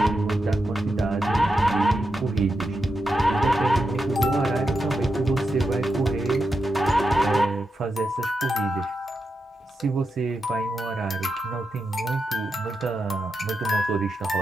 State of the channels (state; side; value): normal; both; correlation 0.87